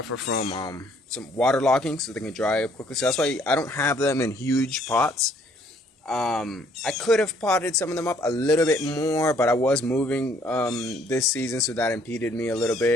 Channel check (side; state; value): both; normal; correlation 0.63